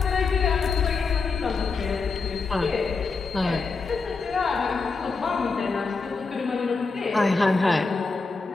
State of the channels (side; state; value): right; quieter; 4.4 dB